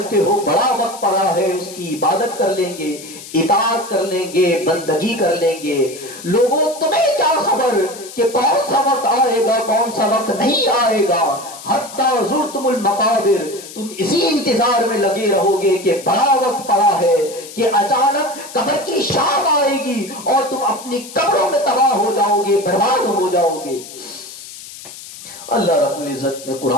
ہو بڑا وقت پڑا ہے, اس کی عبادت کر لیں گے, اطاعت کر لیں گے, بندگی کر لیں گے. لوگوں تمہیں کیا خبر کہ کون سا وقت آئے گا, کون سا وقت نہیں آئے گا. حتی زرتم المقابر, تم اسی انتظار میں لگے رہو گے کہ بڑا وقت پڑا ہے کہ اچانک قبر کی شام آئے گی اور تم اپنی قبروں میں تباہ ہو جاؤ گے, برباد ہو جاؤ گے. اللہ رب العزت نے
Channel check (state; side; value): noise; left; hiss, 15 dB below the sound